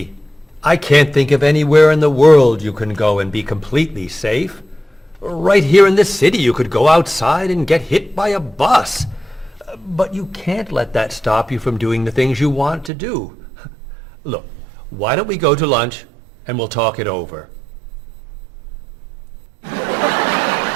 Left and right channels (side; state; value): left; drops out; at 12.9 s